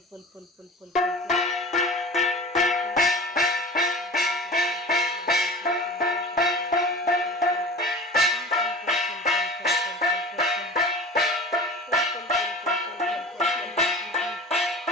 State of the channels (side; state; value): both; normal; correlation 0.37